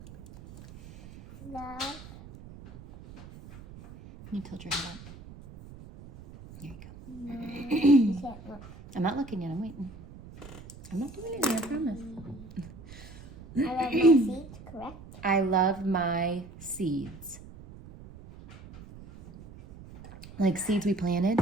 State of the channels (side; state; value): right; noise; rumble, 17 dB below the sound